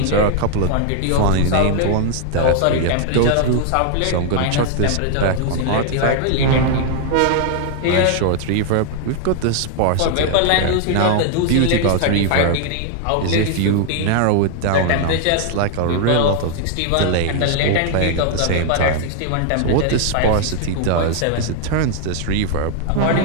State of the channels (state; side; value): different; both; correlation 0.00